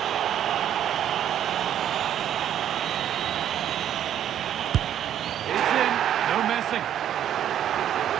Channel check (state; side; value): quieter; left; 10.4 dB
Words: It's in, no messing.